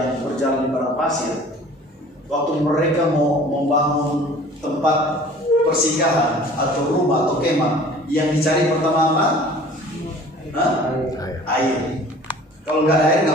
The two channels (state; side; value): normal; both; correlation 0.47